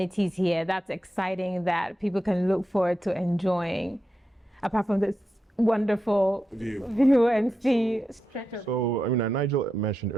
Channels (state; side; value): normal; both; correlation 0.88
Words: here that's exciting that people can look forward to enjoying, apart from this wonderful view and see? So, Nigel mentioned